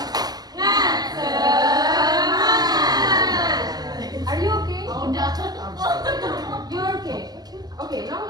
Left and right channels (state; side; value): late; left; 0.19 ms